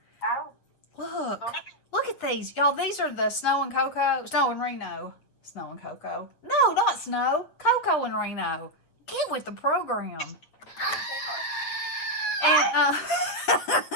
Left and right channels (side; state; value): right; late; 8.1 ms